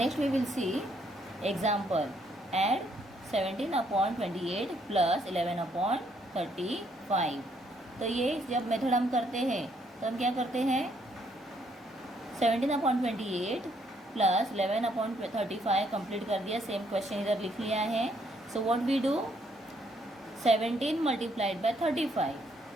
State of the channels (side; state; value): both; normal; correlation 0.70